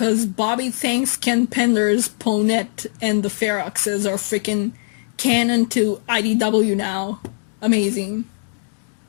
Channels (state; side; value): silent; right; digital silence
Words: Bobby thanks Ken Pender's Ponette and the Feroxes are freaking canon to IDW now. Amazing.